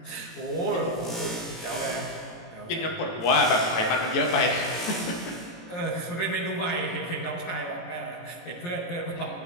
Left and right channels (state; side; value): late; right; 18 ms